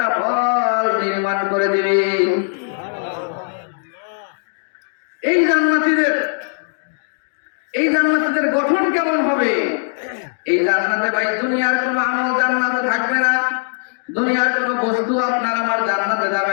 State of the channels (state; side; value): silent; right; digital silence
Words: ফল নির্মাণ করে দিবে। এই জান্নাতীদের গঠন কেমন হবে? এই জান্নাতে ভাই দুনিয়ার কোনো আমল জান্নাতে থাকবে না, দুনিয়ার কোনো বস্তু আপনার আমার জান্নাতে